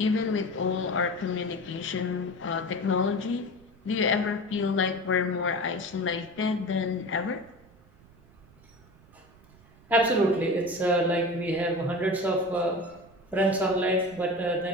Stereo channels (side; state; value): right; noise; rumble, 26 dB below the sound